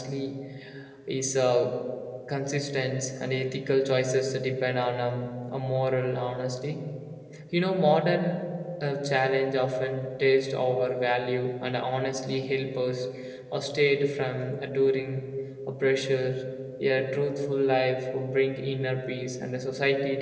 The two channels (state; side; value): identical; both; correlation 1.00